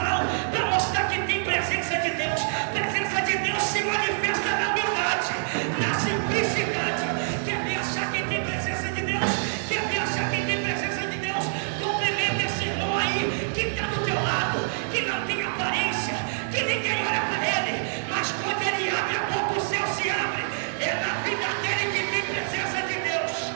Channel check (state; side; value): silent; left; digital silence